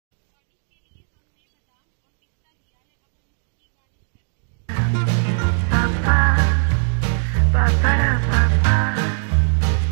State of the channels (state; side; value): silent; left; 65 dB below the other